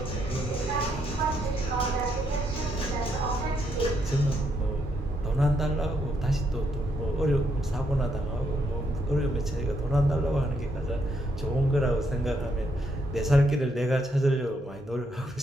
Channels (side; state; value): both; normal; correlation 0.75